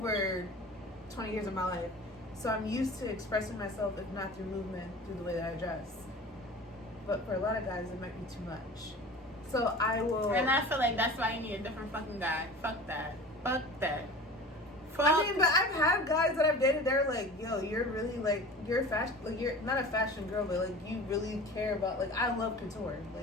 20 years of my life, so I'm used to expressing myself, if not through movement, through the way that I dress. But for a lot of guys, it might be too much. So I will. And I feel like that's why you need a different fucking guy. Fuck that. Fuck. I mean, but I've had guys that I've dated. They're like, "Yo, you're really like you're fashion. Like you're not a fashion girl, but like you really care about. Like I love couture.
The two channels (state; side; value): normal; both; correlation 0.38